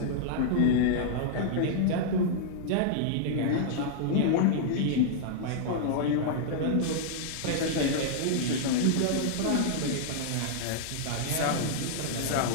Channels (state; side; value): different; both; correlation -0.01